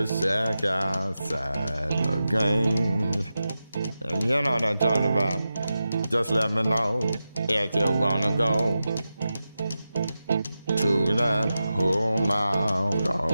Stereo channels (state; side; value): inverted; both; correlation -0.92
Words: shack outside the games. And you know what I'm talking about. Just let me know if you wanna go to that home out